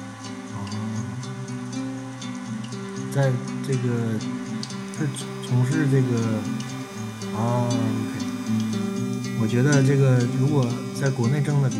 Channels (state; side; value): identical; both; correlation 1.00